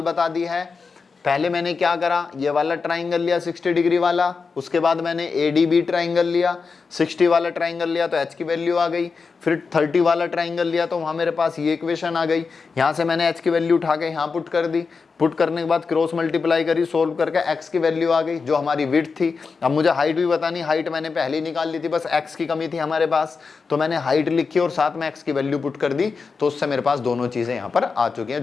बता दी है। पहले मैंने क्या करा, ये वाला ट्राइंगल लिया 60 डिग्री वाला, उसके बाद मैंने ADB ट्राइंगल लिया, 60 वाला ट्राइंगल लिया तो h की वैल्यू आ गई। फिर 30 वाला ट्राइंगल लिया तो वहाँ मेरे पास ये इक्वेशन आ गई। यहाँ से मैंने h की वैल्यू उठा के यहाँ पुट कर दी, पुट करने के बाद क्रॉस मल्टीप्लाई करी, सोल्व करके x की वैल्यू आ गई जो हमारी विड्थ थी। अब मुझे हाइट भी बतानी, हाइट मैंने पहले ही निकाल ली थी, बस x की कमी थी हमारे पास, तो मैंने हाइट लिखी और साथ में x की वैल्यू पुट कर दी, तो उससे मेरे पास दोनों चीजें यहाँ पर आ चुकी हैं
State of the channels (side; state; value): right; quieter; 4.9 dB